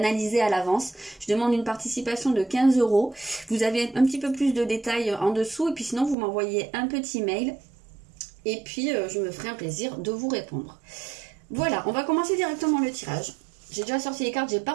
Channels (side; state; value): left; drops out; at 6.2 s